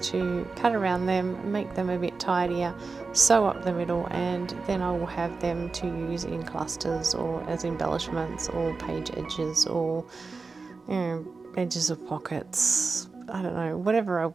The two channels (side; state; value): left; quieter; 4.2 dB